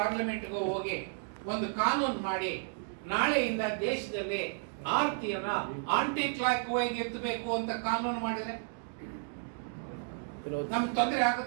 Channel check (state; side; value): silent; left; digital silence